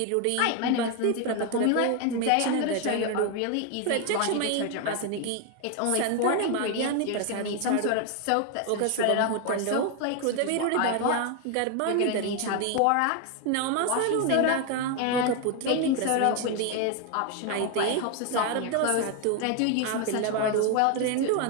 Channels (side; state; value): both; different; correlation 0.01